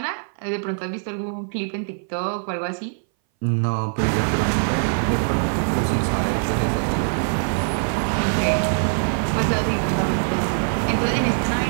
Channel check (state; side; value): silent; left; 60 dB below the other